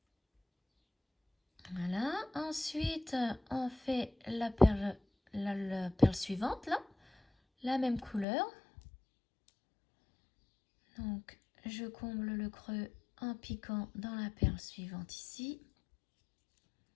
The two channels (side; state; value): right; drops out; at 8.2 s